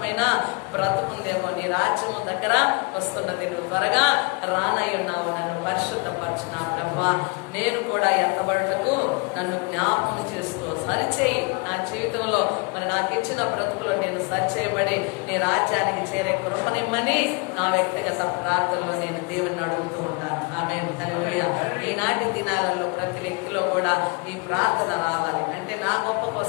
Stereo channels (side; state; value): right; quieter; 32.5 dB